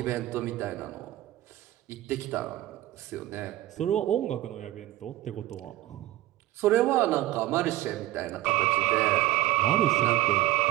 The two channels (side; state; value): left; quieter; 15.9 dB